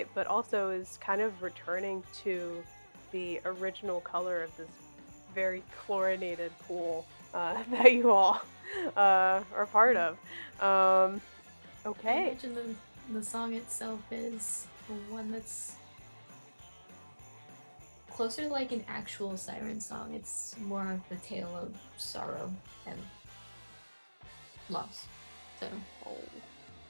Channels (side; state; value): both; inverted; correlation -1.00